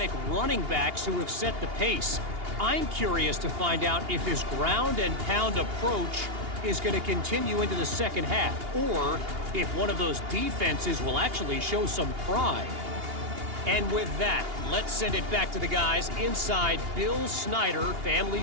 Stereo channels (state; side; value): late; left; 2.8 ms